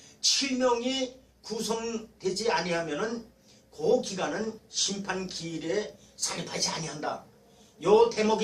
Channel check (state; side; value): identical; both; correlation 1.00